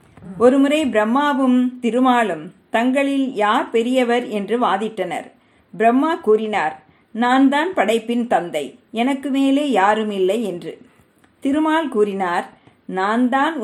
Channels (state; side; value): identical; both; correlation 1.00